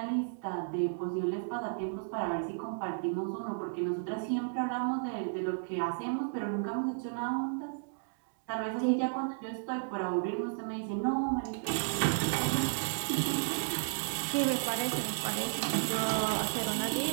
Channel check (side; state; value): left; silent; digital silence